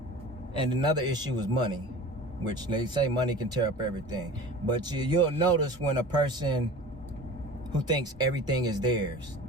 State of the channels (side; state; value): both; normal; correlation 0.39